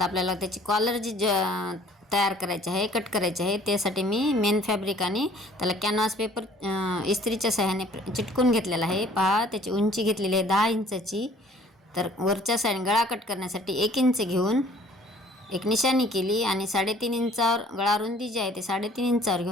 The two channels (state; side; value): normal; both; correlation 0.55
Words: आपल्याला त्याची कॉलर जी तयार करायची आहे, कट करायची आहे, त्यासाठी मी मेन फॅब्रिक आणि त्याला कॅनव्हास पेपर इस्त्रीच्या सहाय्याने चिटकून घेतलेला आहे. पहा, त्याची उंची घेतलेली आहे 10 इंचाची. तर वरच्या साईड गळा कट करण्यासाठी 1 इंच घेऊन एक निशाणी केली आणि 3.5 इंचावर गळा रुंदी जी आहे ते 3.5 इंचावर